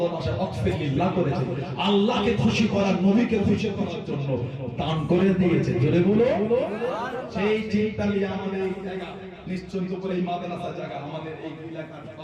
ওয়াকফে লিল্লাহ করেছে, আল্লাহকে খুশি করার, নবীকে খুশি করার জন্য দান করে দিয়েছে। জোরে বলো। সেই চিন্তা নিয়ে আমাদের এই জায়গা নিশ্চিন্ত করে এই মাদ্রাসা জায়গা, আমাদের এই এলাকার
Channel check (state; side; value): identical; both; correlation 1.00